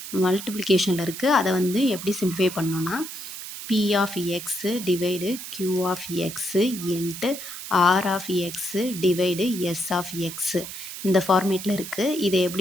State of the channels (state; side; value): noise; right; hiss, 10 dB below the sound